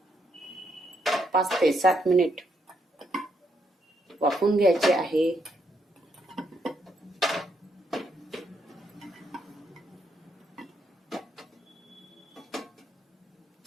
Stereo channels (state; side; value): normal; both; correlation 0.76